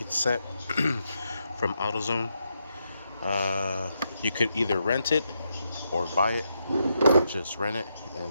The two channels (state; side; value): inverted; both; correlation -0.82